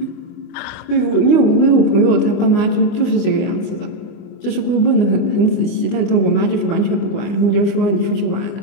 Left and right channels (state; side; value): late; right; 24 ms